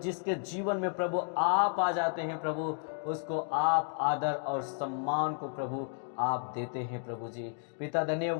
जीवन में प्रभु आप आ जाते हैं प्रभु, उसको आप आदर और सम्मान को प्रभु आप देते हैं प्रभु जी। पिता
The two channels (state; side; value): silent; right; 56 dB below the other